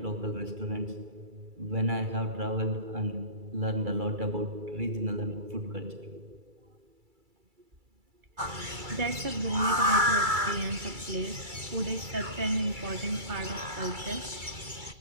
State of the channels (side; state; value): left; late; 2.3 ms